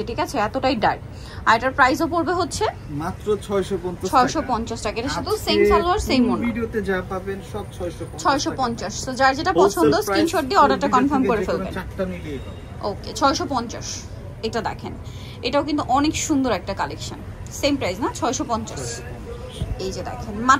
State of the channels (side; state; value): both; identical; correlation 1.00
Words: ঠিক আছে, এতটাই ডার্ক। আর এটার প্রাইসও পড়বে হচ্ছে মাত্র 650 টাকা। এটা শুধু সেম সালোয়ার সেম ওড়না, ভিডিওতে যা পাবেন সব 650। তো যার যেটা পছন্দ স্ক্রিনশট দিয়ে অর্ডারটা কনফার্ম করে ফেলবেন। চারটা মিলিয়ে পাবেন। ওকে 650। এটা দেখেন, এটাও কিন্তু অনেক সুন্দর একটা কালেকশন, সেম প্রাইস না 650। এই যে দেখেন